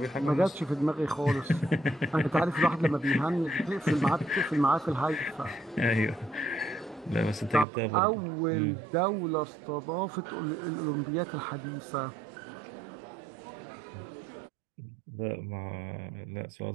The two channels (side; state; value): left; drops out; at 7.7 s